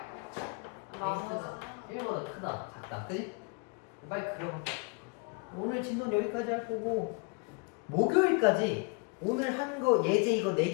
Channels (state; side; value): quieter; right; 33.1 dB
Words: 나와서 1보다 크다, 작다, 그지? 빨리 그려봐. 오늘 진도는 여기까지 할 거고, 목요일까지 오늘 한 거 예제 이거